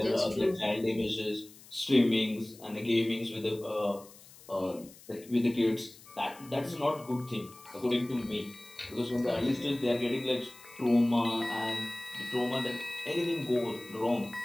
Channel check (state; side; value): noise; left; hiss, 21 dB below the sound